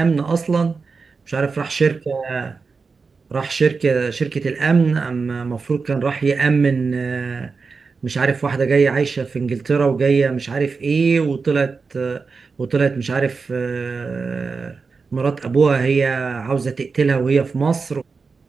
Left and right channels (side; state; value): left; quieter; 4.7 dB